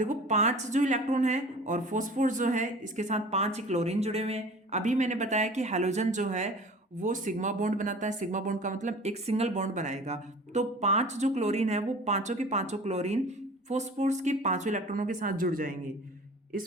5 जो इलेक्ट्रॉन है और फॉस्फोरस जो है इसके साथ 5 क्लोरीन जुड़े हुए हैं। अभी मैंने बताया कि हैलोजन जो है वो सिग्मा बॉन्ड बनाता है। सिग्मा बॉन्ड का मतलब एक सिंगल बॉन्ड बनाएगा। तो 5 जो क्लोरीन है वो पांचों के पांचों क्लोरीन फॉस्फोरस के 5 इलेक्ट्रॉनों के साथ जुड़ जाएंगे।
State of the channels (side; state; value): both; normal; correlation 0.42